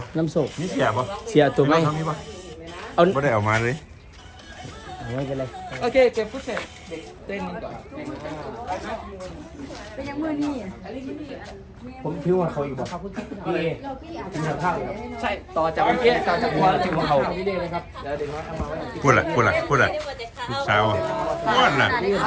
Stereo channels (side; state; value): both; identical; correlation 1.00